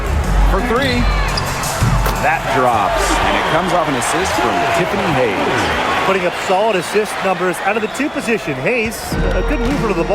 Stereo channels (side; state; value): both; identical; correlation 1.00